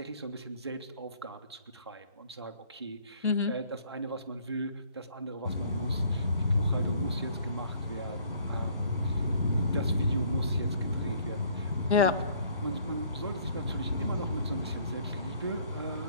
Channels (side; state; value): both; inverted; correlation -0.59